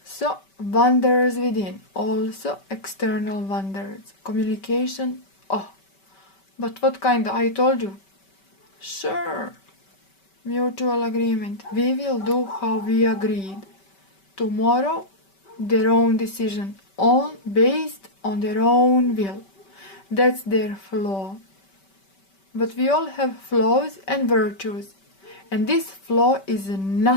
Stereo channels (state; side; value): late; right; 5.2 ms